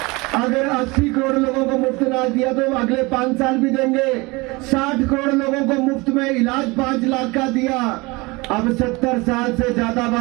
अगर 80 करोड़ लोगों को मुफ्त इलाज दिया तो अगले 5 साल भी देंगे। 60 करोड़ लोगों को मुफ्त में इलाज 5 लाख का दिया। अब 70 साल से ज्यादा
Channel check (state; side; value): quieter; left; 24.5 dB